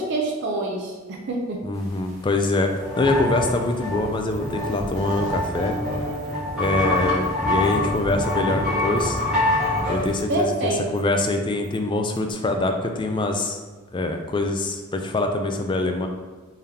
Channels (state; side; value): normal; both; correlation 0.40